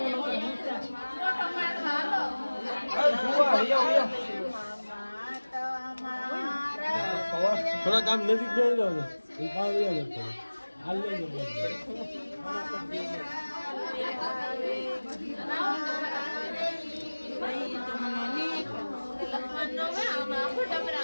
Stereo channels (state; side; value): inverted; both; correlation -1.00